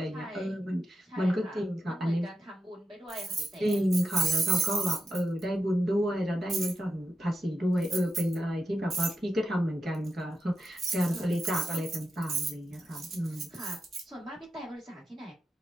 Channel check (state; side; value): normal; both; correlation 0.87